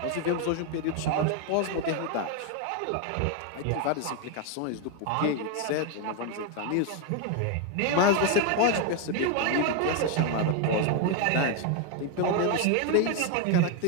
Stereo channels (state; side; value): different; both; correlation 0.01